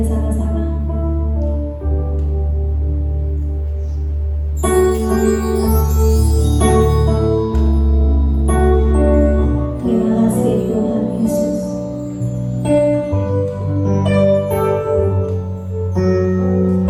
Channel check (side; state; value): both; identical; correlation 1.00